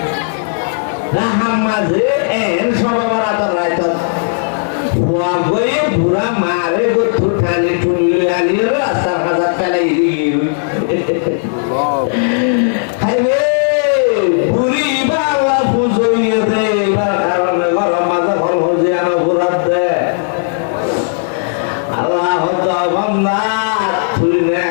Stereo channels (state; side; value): silent; right; digital silence